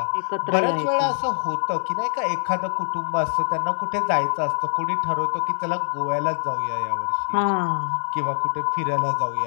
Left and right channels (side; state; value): right; silent; 59 dB below the other